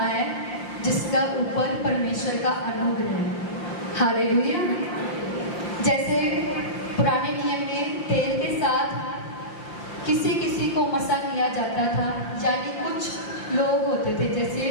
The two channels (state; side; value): late; right; 5.8 ms